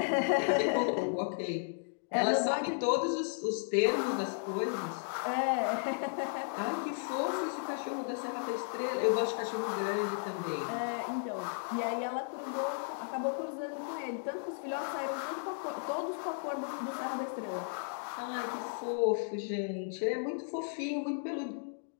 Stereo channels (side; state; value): right; silent; digital silence